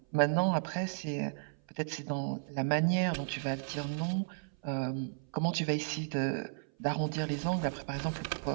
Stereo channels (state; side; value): silent; left; 55 dB below the other